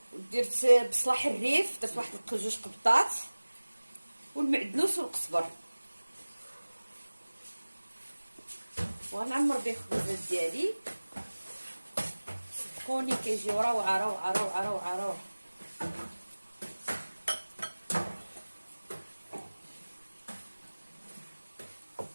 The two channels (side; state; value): both; inverted; correlation -1.00